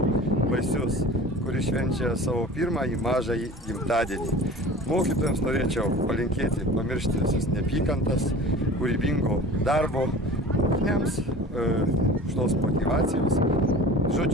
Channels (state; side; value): normal; both; correlation 0.40